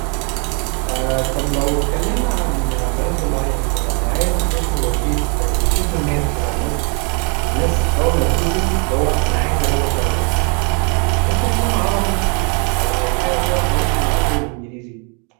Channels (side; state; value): left; quieter; 36.3 dB